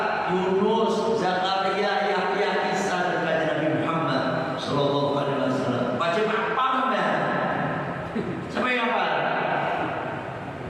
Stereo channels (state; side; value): identical; both; correlation 1.00